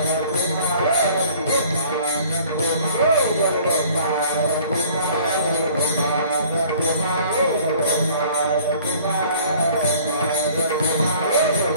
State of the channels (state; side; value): inverted; both; correlation -0.53